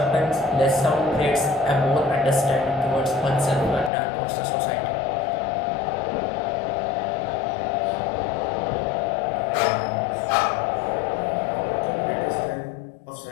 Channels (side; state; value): right; drops out; at 3.9 s